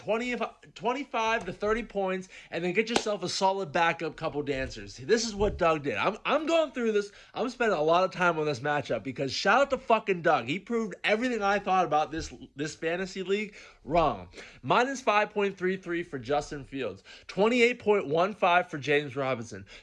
to 30 points, and then get yourself a solid backup couple dancers. This is what Doug did. I'm going through this. I'm spending a lot of time on this matchup because shout out to fucking Doug. He proved everything I thought about this fantasy league wrong. Minus 5.33 for Justin Fields, 28.15 for James Robinson,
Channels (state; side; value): identical; both; correlation 1.00